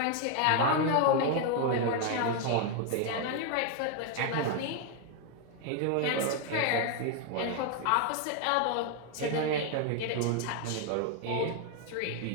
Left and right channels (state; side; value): different; both; correlation 0.01